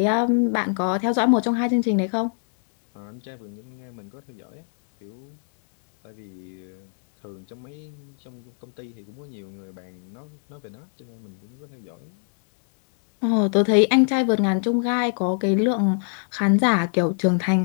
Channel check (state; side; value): silent; right; digital silence